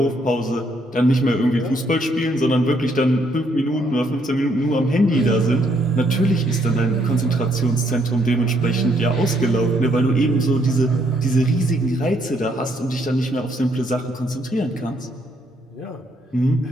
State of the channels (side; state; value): both; normal; correlation 0.71